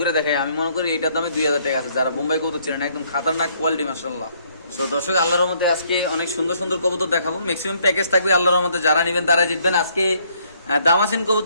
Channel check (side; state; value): both; inverted; correlation -0.67